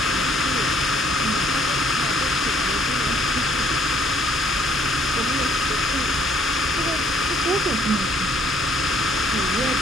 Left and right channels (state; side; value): normal; both; correlation 0.62